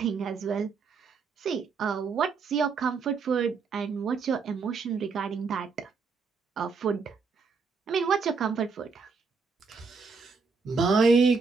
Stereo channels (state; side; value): quieter; left; 4.9 dB